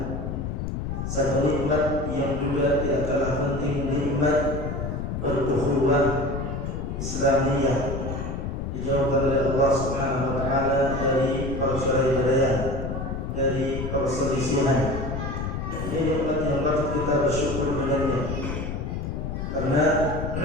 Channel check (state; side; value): noise; left; rumble, 4 dB below the sound